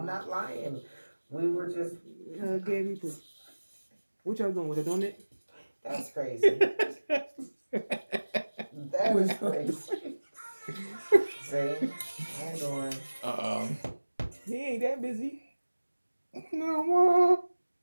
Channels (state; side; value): inverted; both; correlation -1.00